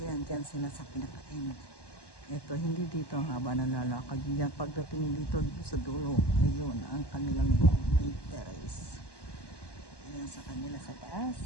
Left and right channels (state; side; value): late; right; 1.1 ms